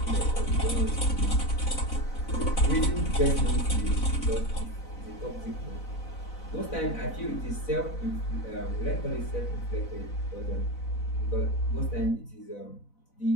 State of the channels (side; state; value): right; late; 4.0 ms